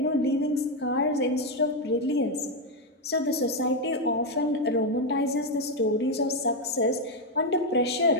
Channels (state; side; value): normal; both; correlation 0.05